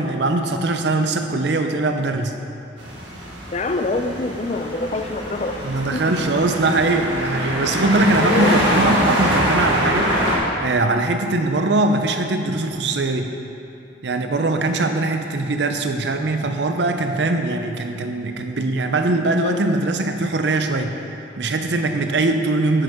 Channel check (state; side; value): normal; both; correlation 0.35